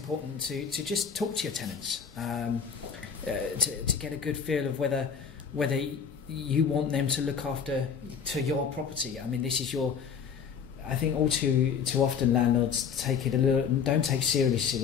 to just talk to your tenants to get a good feel of whether you want them to look after your property. I mean, this is your. I think all too often landlords don't take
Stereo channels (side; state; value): right; quieter; 6.8 dB